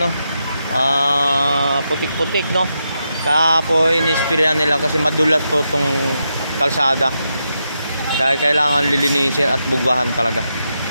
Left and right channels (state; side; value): inverted; both; correlation -0.85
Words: putik-putik, no. Kaya po inispirahan nila kasi madulas po itong kalsada. Kaya kailangan lilinisin at bugwahan talaga.